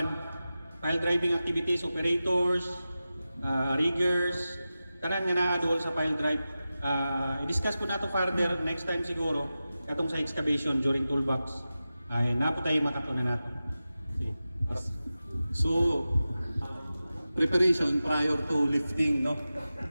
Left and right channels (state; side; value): inverted; both; correlation -0.94